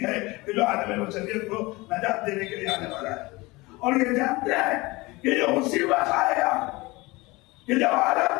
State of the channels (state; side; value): quieter; right; 22.8 dB